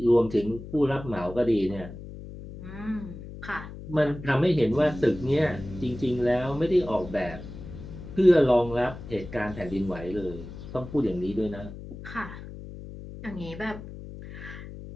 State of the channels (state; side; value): noise; left; hum, 12 dB below the sound